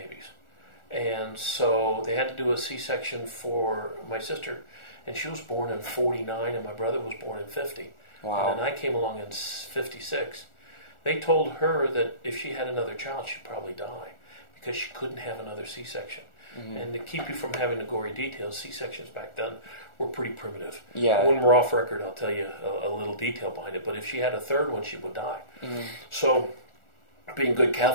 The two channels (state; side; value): late; right; 1.4 ms